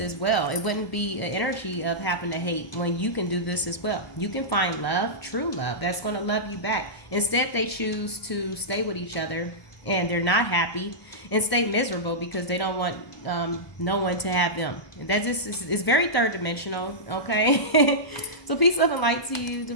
well. It wouldn't be an energy of having to hate when you can do this as well. You can find love, true love, that's going to love you back. Instead, they choose to stay with each other and they're not happy and stay miserable because they don't want no one to have them. And that just is very third dimensional, okay? So peace, love, and light to you,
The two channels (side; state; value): right; late; 1.0 ms